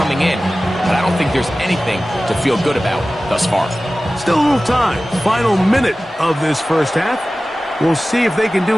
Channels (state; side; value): normal; both; correlation 0.96